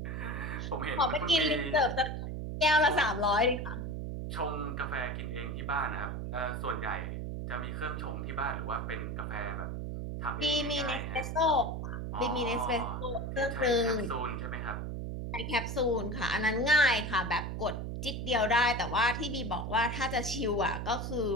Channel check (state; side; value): noise; right; hum, 4 dB below the sound